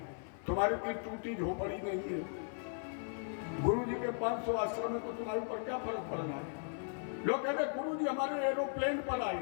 तुम्हारी की टूटी झोपड़ी नहीं है। गुरु जी के 500 आश्रम में तो तुम्हारे ऊपर क्या फर्क पड़ रहा है? लोग कहते हैं गुरु जी हमारे एरोप्लेन पर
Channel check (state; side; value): silent; right; 53 dB below the other